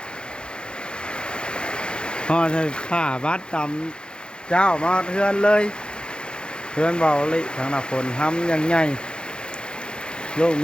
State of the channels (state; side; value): late; right; 0.051 ms